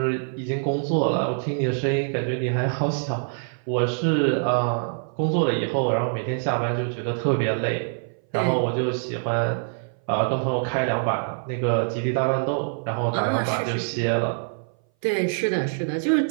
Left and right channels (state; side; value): silent; left; 59 dB below the other